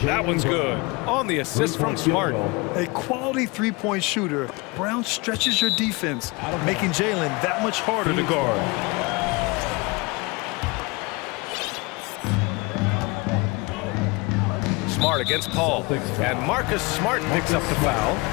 That one's good. On the assist from Smart. A quality three-point shooter, Brown stretches your defense, making Jalen that much harder to guard. Smart against Paul, and Marcus Smart picks up the foul.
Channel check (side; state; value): right; quieter; 26.4 dB